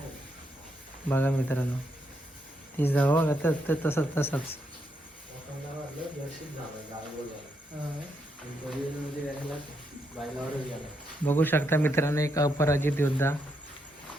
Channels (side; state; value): both; normal; correlation 0.79